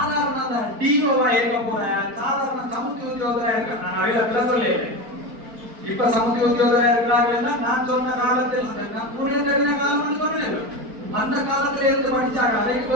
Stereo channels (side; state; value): left; late; 4.5 ms